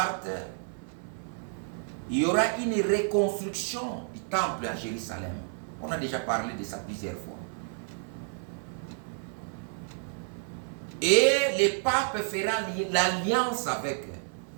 il y aura une reconstruction du temple à Jérusalem. On a déjà parlé de ça plusieurs fois. Et le pape fera l'alliance avec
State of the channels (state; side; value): silent; left; 55 dB below the other